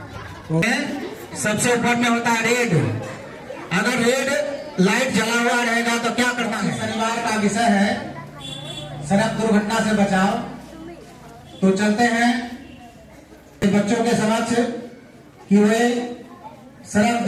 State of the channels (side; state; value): both; identical; correlation 1.00